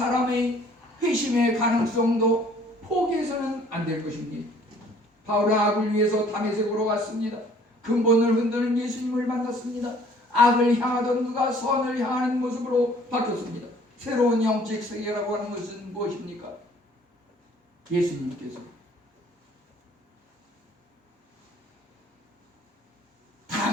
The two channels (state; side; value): normal; both; correlation 0.56